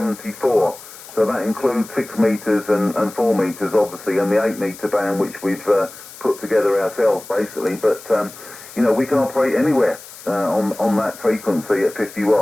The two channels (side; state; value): left; noise; hiss, 17 dB below the sound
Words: So that includes 6 metres and 4 metres, obviously, and the 8 metre band, which we've put together ourselves, basically. But, you know, we can operate anywhere on that frequency at 50